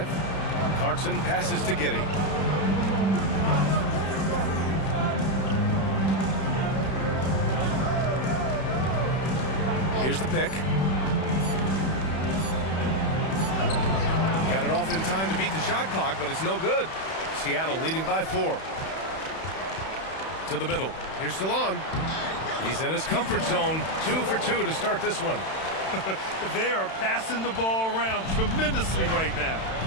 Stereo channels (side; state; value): right; late; 31 ms